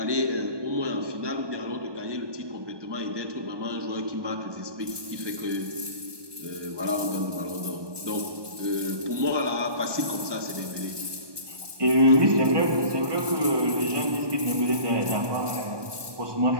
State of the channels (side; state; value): left; late; 1.2 ms